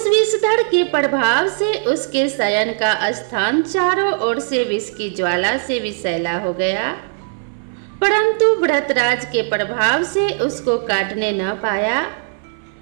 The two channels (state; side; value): silent; left; 60 dB below the other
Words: विषधर के प्रभाव से उसके शयन का स्थान चारों ओर से विष की ज्वाला से विषैला हो गया, परंतु व्रतराज के प्रभाव से उसको काटने न पाया,